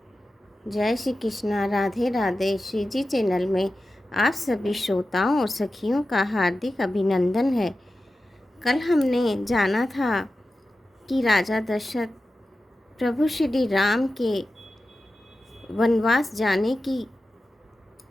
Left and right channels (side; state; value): both; normal; correlation 0.93